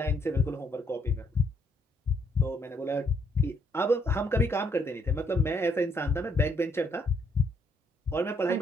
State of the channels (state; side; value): normal; both; correlation 0.71